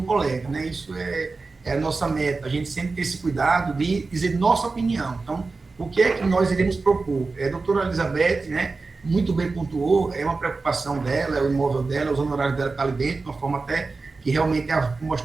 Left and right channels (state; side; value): quieter; left; 3.9 dB